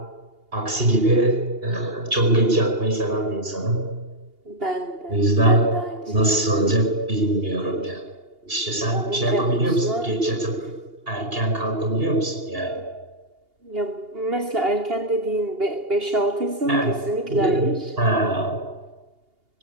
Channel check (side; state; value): left; late; 2.8 ms